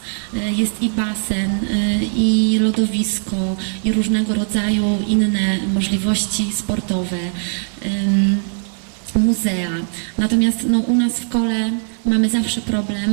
Jest i basen, i lodowisko, i różnego rodzaju inne możliwości sportowe, muzea. Natomiast no, u nas w Kole mamy zawsze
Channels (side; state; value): left; silent; 66 dB below the other